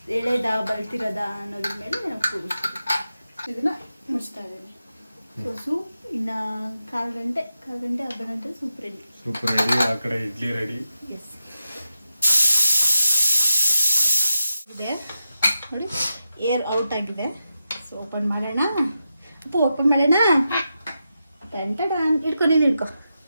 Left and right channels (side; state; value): both; inverted; correlation -0.87